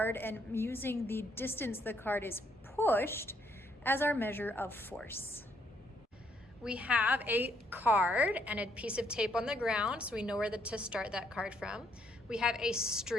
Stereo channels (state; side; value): normal; both; correlation 0.72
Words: and using the distance the card is pushed as our measure of force. We have a card and a piece of tape on the ground, so we know where to start that card from. We have a